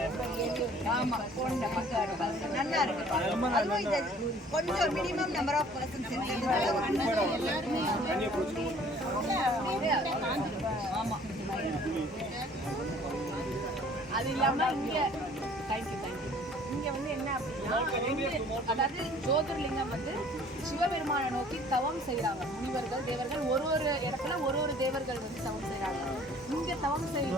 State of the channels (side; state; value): both; normal; correlation 0.54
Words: ஆமாம் போன நல்லா இருக்கு. அதுவும் இது கொஞ்சம் மினிமம் நம்பர் ஆஃப் பர்சன்ஸ் ஆமாம். அது இல்லாமல் இங்கே தேங்க்யூ இங்கே வந்து என்ன அப்படின்னா, அதாவது ஜோதிர்லிங்கம் வந்து சிவபெருமானை நோக்கி தவம் செய்கிறாங்க முனிவர்கள், தேவர்கள். ஒரு இடத்துல ஒரு தேவர்கள் வந்து தவம் செய்கிறாங்க. இங்கே தவம் செய்த